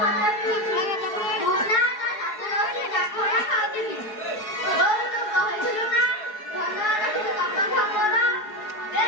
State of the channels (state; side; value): late; right; 4.7 ms